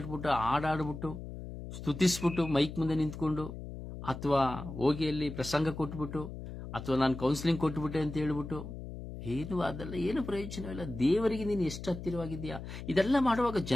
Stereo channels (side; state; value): left; noise; hum, 10 dB below the sound